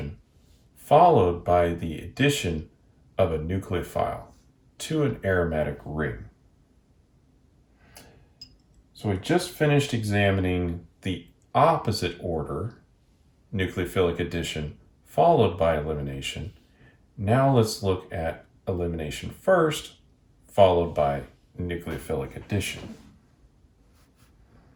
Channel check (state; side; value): identical; both; correlation 1.00